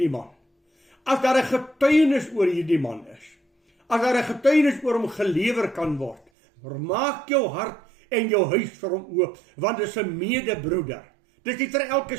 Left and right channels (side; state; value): left; drops out; at 6.2 s